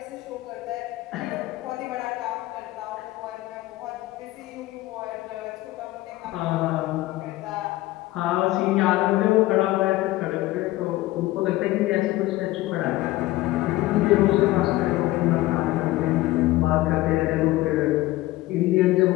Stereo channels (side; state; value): right; quieter; 17.6 dB